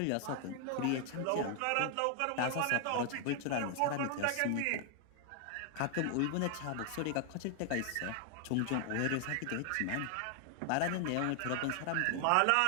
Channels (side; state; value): both; different; correlation 0.00